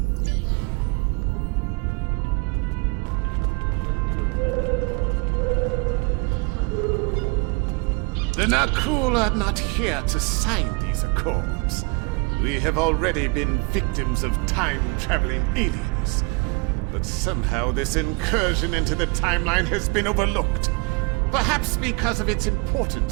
The Nakul are not here to sign these accords. We have already been victims of time-traveling aliens. But somehow this incursion into the timeline has been overlooked. Perhaps because of its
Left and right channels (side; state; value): left; quieter; 30.5 dB